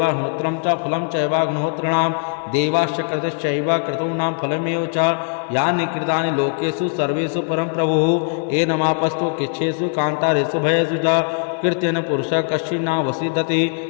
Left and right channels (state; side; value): silent; right; 57 dB below the other